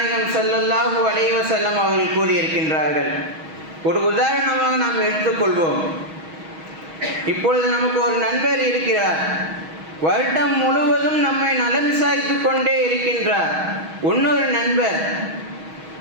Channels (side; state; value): left; late; 6.3 ms